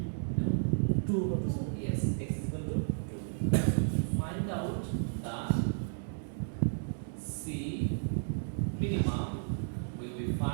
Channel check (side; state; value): left; silent; digital silence